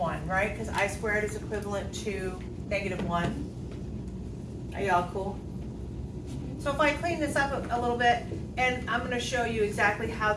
right? Because I squared is equivalent to negative 1. Are y'all cool? So if I clean this up a little bit, and I'm going to show you exactly how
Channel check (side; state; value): both; identical; correlation 1.00